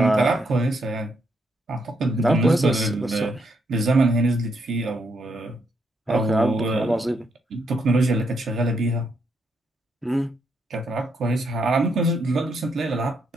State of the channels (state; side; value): normal; both; correlation 0.77